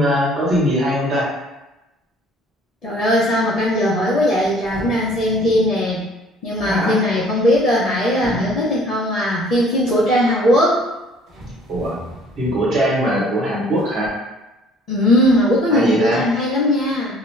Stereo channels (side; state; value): both; normal; correlation 0.55